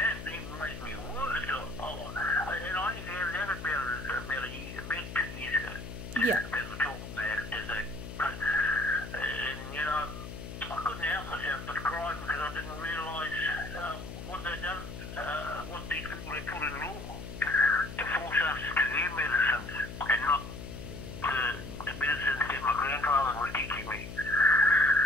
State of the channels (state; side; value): noise; left; hum, 10 dB below the sound